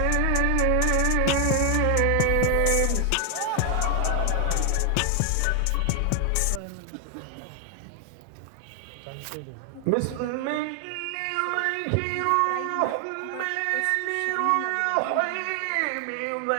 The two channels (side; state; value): both; different; correlation 0.00